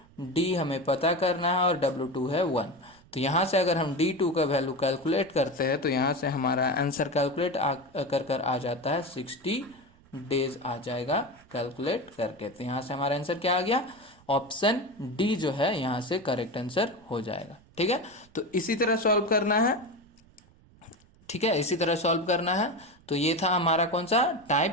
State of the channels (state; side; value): noise; right; rumble, 28 dB below the sound